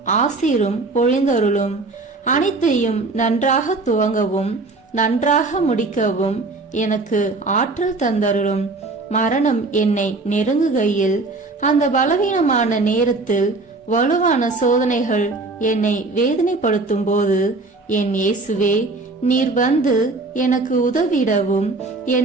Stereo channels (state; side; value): quieter; left; 3.5 dB